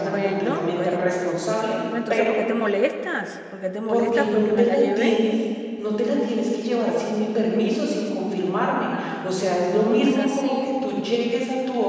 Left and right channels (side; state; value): both; identical; correlation 1.00